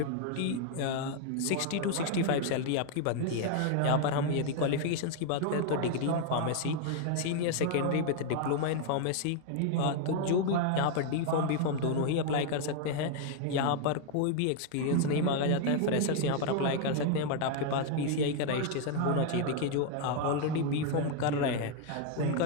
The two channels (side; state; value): both; different; correlation 0.00